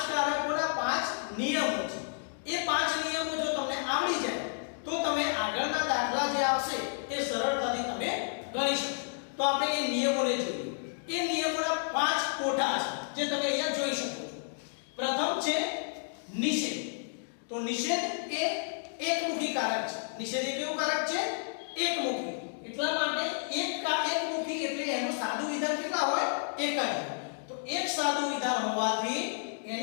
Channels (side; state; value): right; silent; digital silence